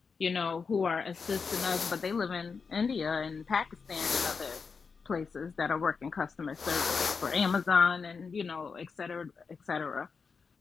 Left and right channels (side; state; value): right; quieter; 5.2 dB